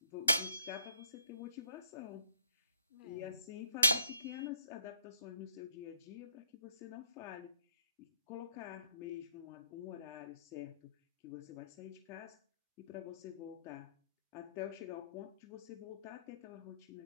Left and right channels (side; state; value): both; inverted; correlation -0.63